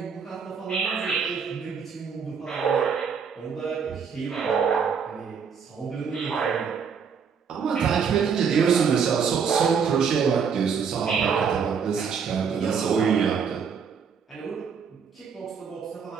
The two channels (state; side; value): quieter; left; 6.4 dB